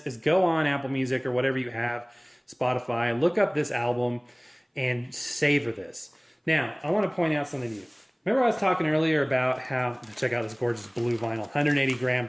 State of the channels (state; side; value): identical; both; correlation 1.00